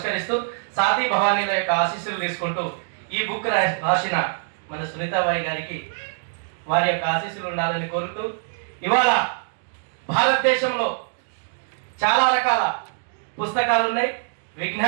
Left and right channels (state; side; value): silent; left; digital silence